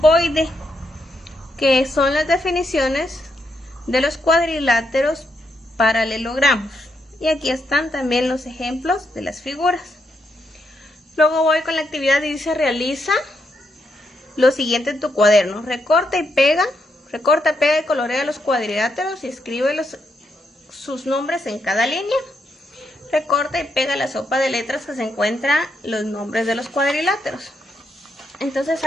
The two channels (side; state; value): both; normal; correlation 0.80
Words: que son las definiciones de los cuadriláteros paralelogramos. Y aquí están también los ejemplos de las figuras. Luego voy con la actividad y dice: realiza lo siguiente en tu cuaderno. Recorta, pega y colorea los cuadriláteros y escribe sus nombres en cada línea. Recorta y pega la sopa de letras que se encuentra los nombres de los cuadriláteros. Entonces